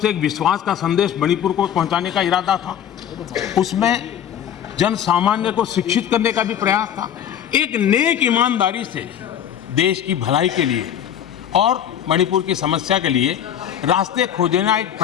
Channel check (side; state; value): right; quieter; 9.7 dB